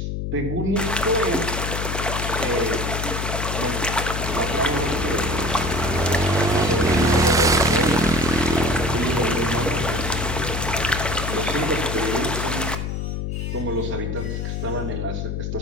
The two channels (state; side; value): noise; left; hum, 3 dB below the sound